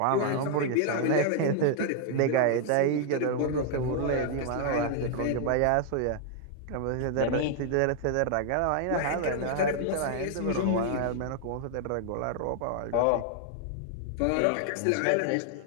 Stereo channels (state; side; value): different; both; correlation 0.00